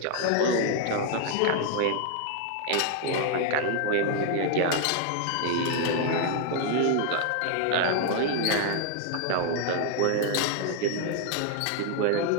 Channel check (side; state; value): both; different; correlation 0.00